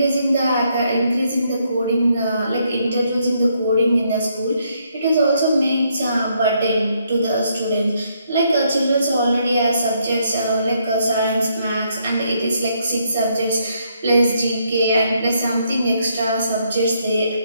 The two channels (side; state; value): both; inverted; correlation -0.73